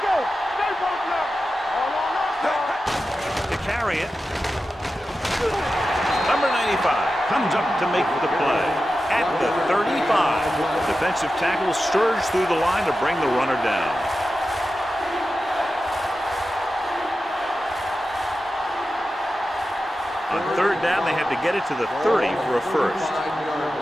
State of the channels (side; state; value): both; normal; correlation 0.92